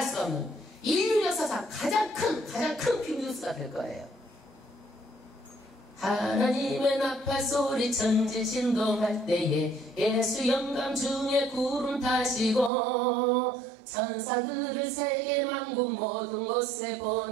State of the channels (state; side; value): drops out; left; at 12.7 s